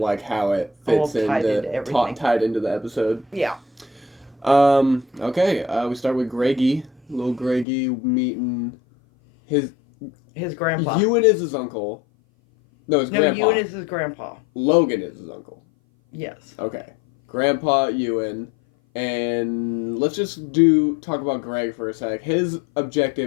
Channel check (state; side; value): drops out; right; at 7.7 s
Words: how it fits tied into the episode. Yeah. Okay. We start with Greggy. Little Greggy meeting his grandpa. Ewan is his uncle. No, his grandpa. Ewan is his grandpa. Logan is his uncle. Yes. Okay. Grandpa Ewan. And let's just talk about Greg for a sec. His